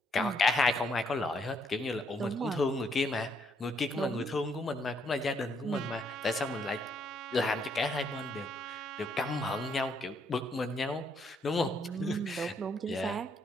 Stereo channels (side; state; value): both; normal; correlation 0.72